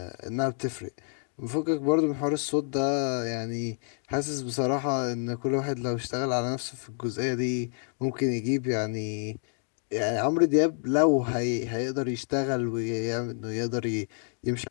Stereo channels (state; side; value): silent; right; 56 dB below the other